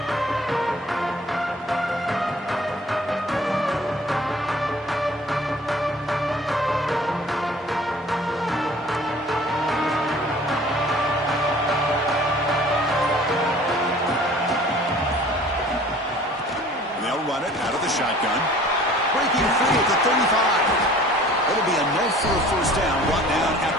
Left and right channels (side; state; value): both; normal; correlation 0.49